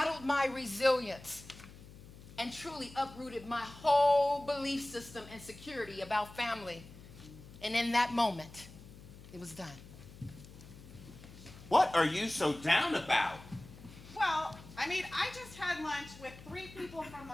my resilience and truly uprooted my whole belief system and security about family. And in that moment, it was done. What are you so down about? Well, I just had lunch with 3 people from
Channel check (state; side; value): noise; left; hum, 18 dB below the sound